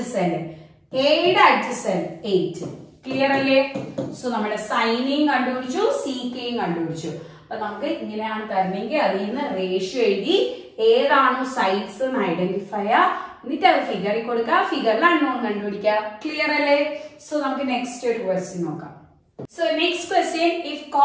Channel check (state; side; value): identical; both; correlation 1.00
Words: എയുടെ അഡ്ജസന്റ് 8. ക്ലിയർ അല്ലേ? സോ നമ്മുടെ സൈനെയും കണ്ടുപിടിച്ചു, സീക്കയും കണ്ടുപിടിച്ചു. അപ്പൊ നമുക്ക് ഇങ്ങനെയാണ് തരണമെങ്കിൽ അതിൽ നിന്ന് റേഷ്യോ എഴുതി ഏതാണോ സൈഡ്സ് എന്ന് ഐഡന്റിഫൈ ചെയ്യുക, എന്നിട്ട് അത് ഫിഗറിൽ കൊടുക്കുക, ഫിഗറിൽ അൺനോൺ കണ്ടുപിടിക്കുക. ക്ലിയർ അല്ലേ? സോ നമുക്ക് നെക്സ്റ്റ് ഒരു ക്വസ്റ്റ്യൻ നോക്കാം. So next question, if